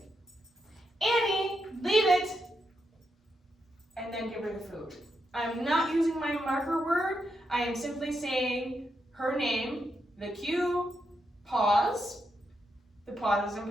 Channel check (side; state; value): both; normal; correlation 0.83